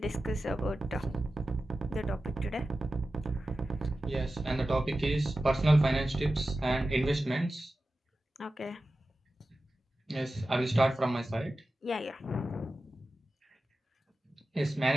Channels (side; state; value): both; normal; correlation 0.94